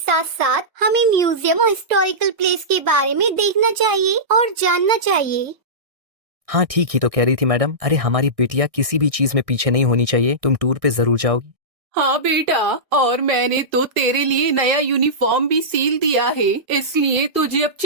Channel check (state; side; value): late; left; 1.6 ms